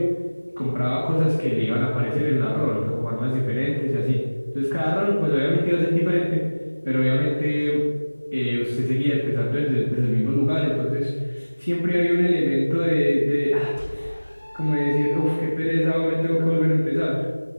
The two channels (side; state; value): both; inverted; correlation -1.00